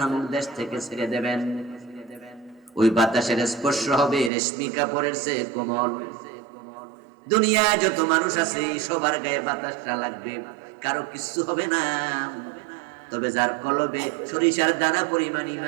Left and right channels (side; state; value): left; drops out; at 4.3 s